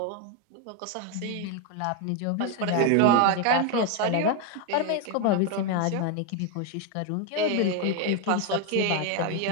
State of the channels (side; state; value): both; different; correlation 0.01